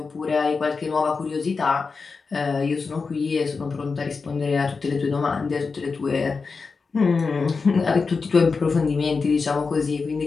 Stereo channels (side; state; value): right; quieter; 4.7 dB